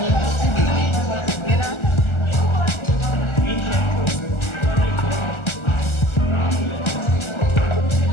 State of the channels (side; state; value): right; late; 1.4 ms